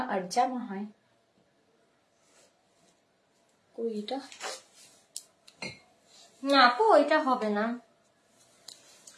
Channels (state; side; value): identical; both; correlation 1.00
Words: আর জামা হয়। কই এটা? না আপু ওইটা হবে না।